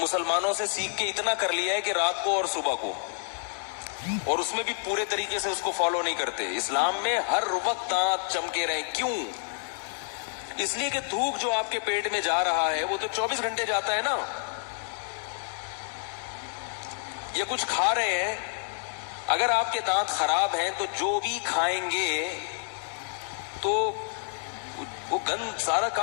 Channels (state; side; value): silent; right; 57 dB below the other